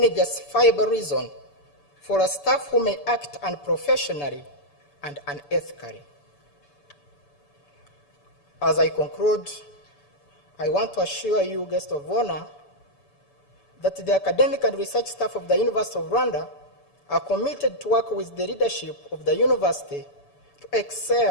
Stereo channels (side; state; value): right; late; 6.9 ms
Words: justifiable reason for a staff who may act unprofessionally and unethically. As I conclude, I want to assure you, guest of honor, that the academic and research staff of the University of Rwanda are committed to work with the leadership of the university to